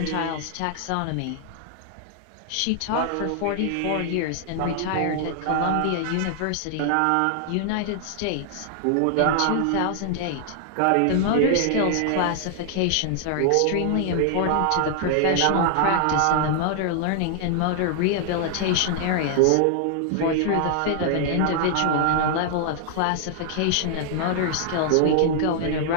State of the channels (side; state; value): both; different; correlation 0.00